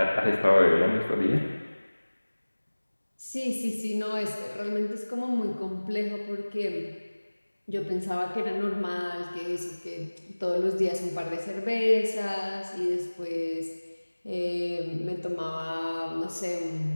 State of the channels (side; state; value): both; inverted; correlation -1.00